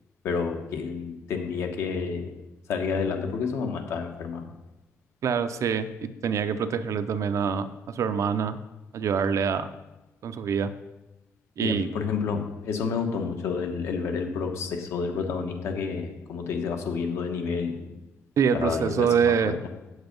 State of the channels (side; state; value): both; normal; correlation 0.55